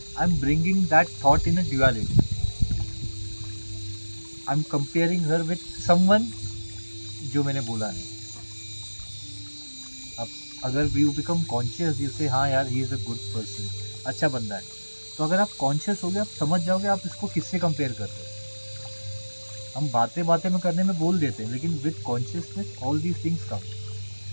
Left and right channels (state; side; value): inverted; both; correlation -1.00